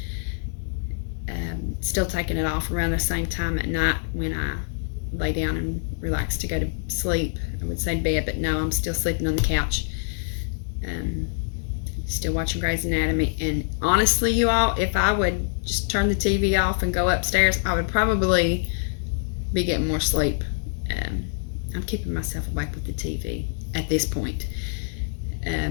Still taking it off around the same time at night when I lay down and relax to go to sleep. I would say bed, but no, I'm still sleeping on the couch. Still watching Grey's Anatomy. And honestly, you all, if I would just turn the TV off and go upstairs, I would probably be getting more sleep. I'm keeping myself awake with the TV at this point.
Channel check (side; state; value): right; silent; 62 dB below the other